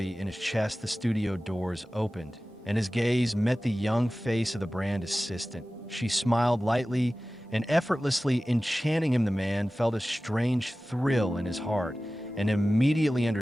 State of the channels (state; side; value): normal; both; correlation 0.96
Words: in his chest. The studio doors opened, and his gaze met the young face of the brand assistant. She smiled lightly and effortlessly, enchanting him. The man felt a strange thrill in his heart and immediately